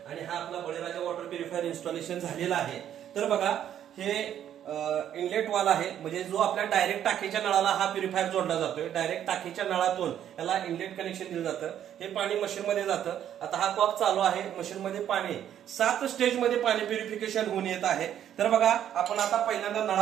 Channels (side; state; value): left; quieter; 10.3 dB